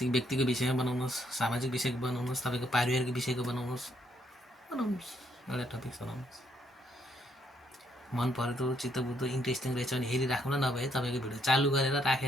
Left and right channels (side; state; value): both; normal; correlation 0.72